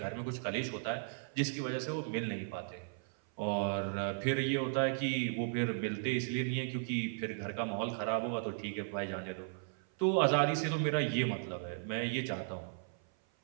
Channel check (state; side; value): silent; left; 54 dB below the other